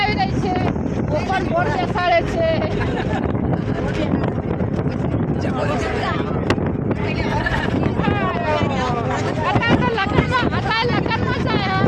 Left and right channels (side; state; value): both; identical; correlation 1.00